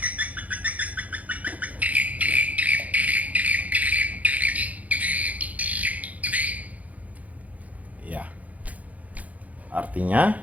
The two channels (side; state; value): left; late; 0.073 ms